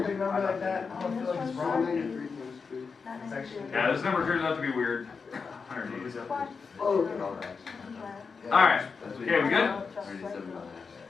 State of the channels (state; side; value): quieter; right; 5.2 dB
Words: big number like that, I don't feel like it's wrong. It's actually. Yeah, this number turns out to be weird. 180. Oh, Alright. Okay, we good? 187.